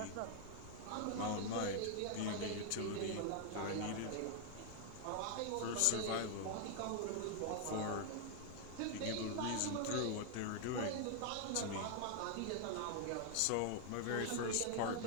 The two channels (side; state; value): both; different; correlation 0.00